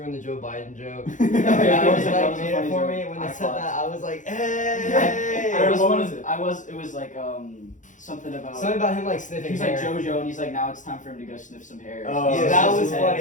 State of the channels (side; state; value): right; late; 0.37 ms